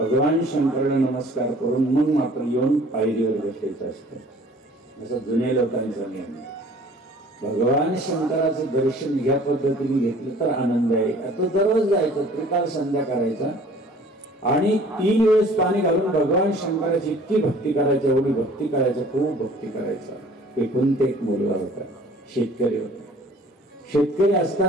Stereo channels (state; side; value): normal; both; correlation 0.51